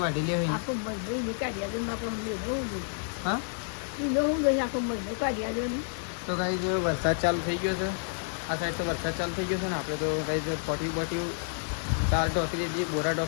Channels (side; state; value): right; silent; digital silence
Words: વાટેલી હોય ને હા તો ગાઈસ વરસાદ ચાલુ થઈ ગયો છે. આ સાઈડ તો વરસાદ ચાલુ થઈ ગયો છે ને આપણે તો ગાઈસ પોટી બોટી 4 ઢોકી દીધી, બોરા